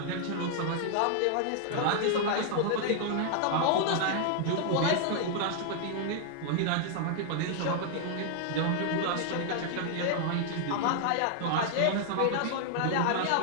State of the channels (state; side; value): different; both; correlation 0.00